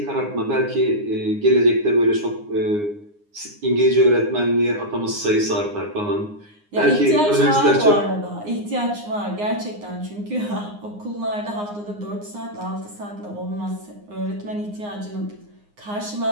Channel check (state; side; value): late; left; 9.7 ms